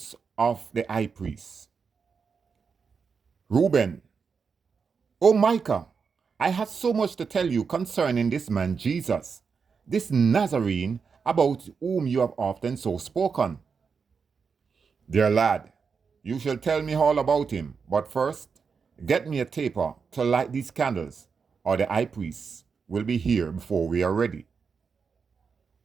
of the high priest. Reuben, O Micah, I have so much to tell you concerning this man Jesus, this Nazarene, about whom you have often so spoken. Dear lad, you shall tell me all about him, but first, get me a taper to light these candles, or the high priest will be here before we are ready.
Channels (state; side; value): quieter; left; 5.6 dB